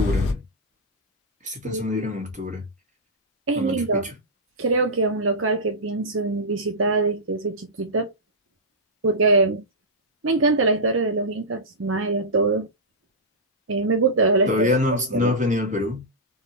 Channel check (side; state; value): both; normal; correlation -0.11